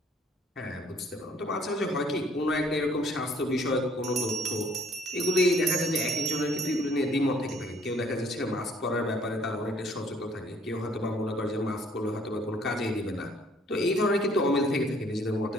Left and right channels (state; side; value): normal; both; correlation 0.61